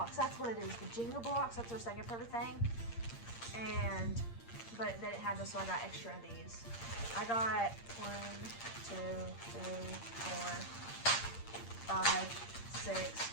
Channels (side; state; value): right; late; 8.6 ms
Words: That's what it is. The Jenga blocks. That's her second favorite thing. But they didn't have this, so I got extra of these. I got 1, 2, 3, 4, 5, 6,